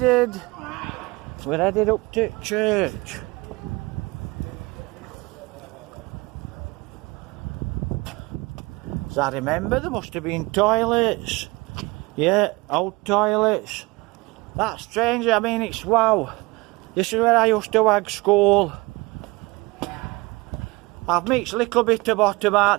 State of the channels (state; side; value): quieter; left; 23.6 dB